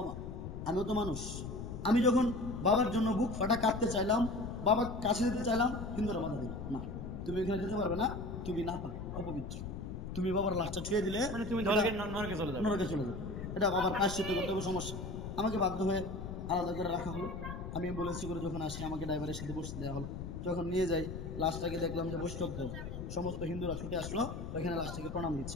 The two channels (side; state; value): left; noise; rumble, 7 dB below the sound